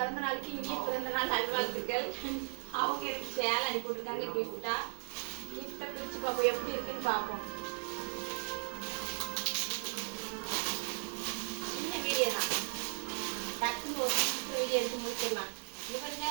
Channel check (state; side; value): silent; left; digital silence